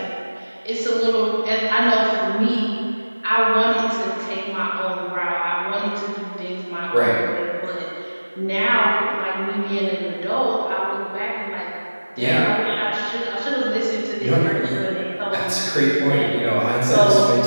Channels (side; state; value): both; inverted; correlation -1.00